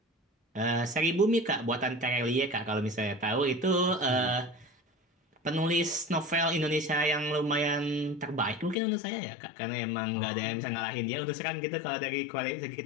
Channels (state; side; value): drops out; right; at 8.8 s